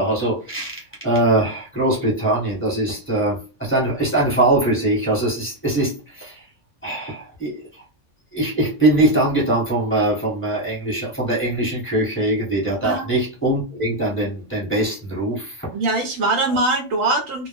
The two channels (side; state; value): both; normal; correlation 0.02